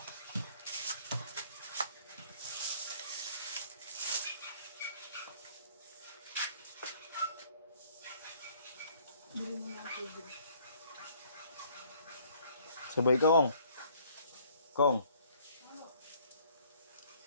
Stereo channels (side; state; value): both; inverted; correlation -0.59